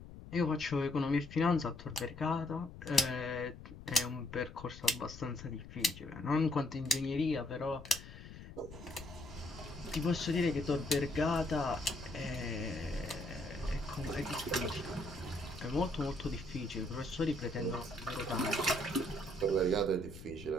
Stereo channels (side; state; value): left; noise; rumble, 14 dB below the sound